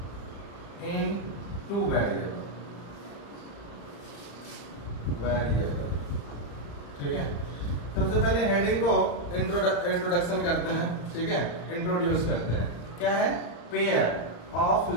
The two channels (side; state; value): right; late; 35 ms